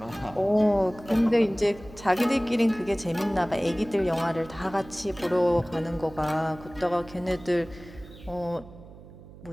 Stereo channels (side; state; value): right; noise; hum, 19 dB below the sound